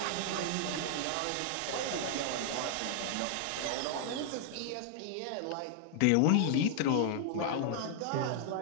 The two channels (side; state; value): both; different; correlation 0.00